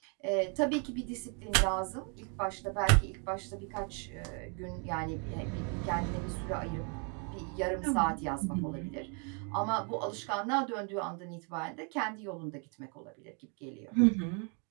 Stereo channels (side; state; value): left; quieter; 38.0 dB